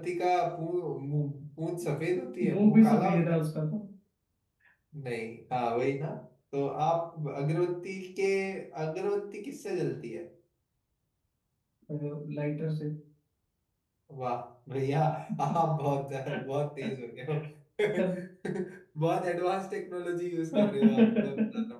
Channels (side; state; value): both; identical; correlation 1.00